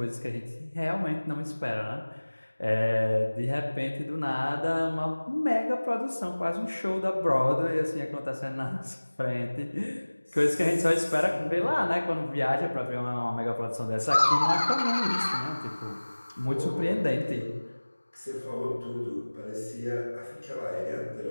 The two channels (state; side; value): inverted; both; correlation -1.00